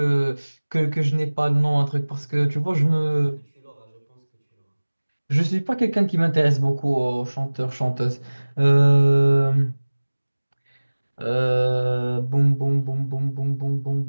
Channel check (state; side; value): inverted; both; correlation -1.00